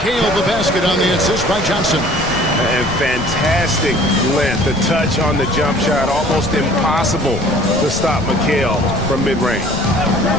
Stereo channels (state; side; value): noise; left; rumble, 11 dB below the sound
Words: the basket on the assist by Johnson. And fantastic length. The touch on the jump shot. Almost impossible to stop McHale from mid-range.